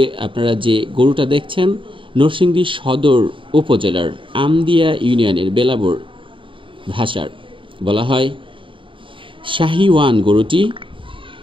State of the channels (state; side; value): late; left; 0.25 ms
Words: আপনারা যে গরুটা দেখছেন নরসিংদী সদর উপজেলার আমদিয়া ইউনিয়নের বেলাবর ভাষার বলা হয় শাহিওয়ান। গরুটি